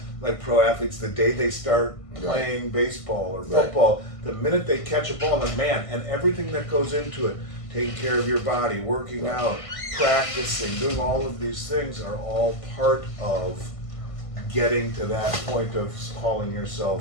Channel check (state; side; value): late; right; 1.5 ms